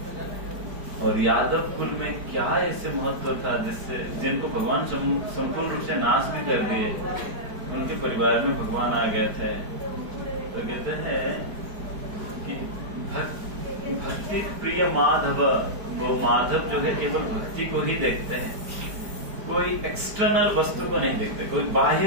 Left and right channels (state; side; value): late; left; 4.9 ms